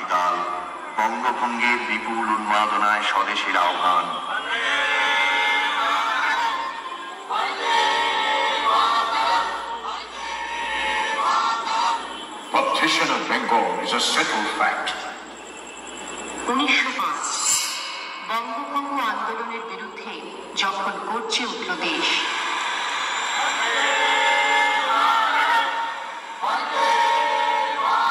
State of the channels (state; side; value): identical; both; correlation 1.00